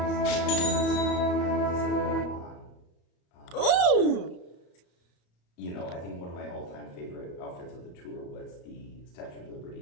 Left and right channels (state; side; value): late; right; 34 ms